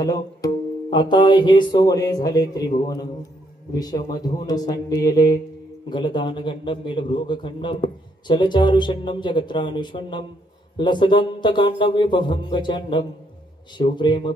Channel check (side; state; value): both; normal; correlation 0.72